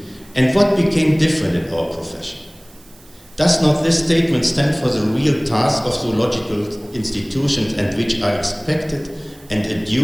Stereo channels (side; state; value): right; noise; hiss, 27 dB below the sound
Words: And what became different in our profession? Does not this statement stand for the real task of zoological institutions and which are expected and